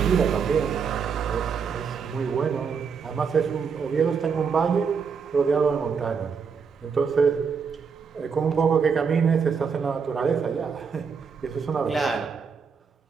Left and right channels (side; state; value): left; quieter; 6.0 dB